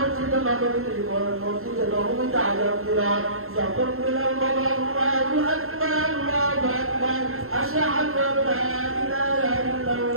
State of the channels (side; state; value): left; late; 0.62 ms